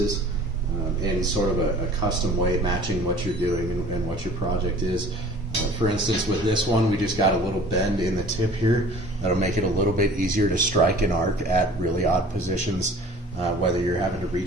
in sort of a custom way, matching what you're doing and what your project is. For instance, with this one, we just got a little bend in the tip here that'll make it a little bit easier to strike an arc at really odd positions, whether you're having to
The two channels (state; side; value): normal; both; correlation 0.47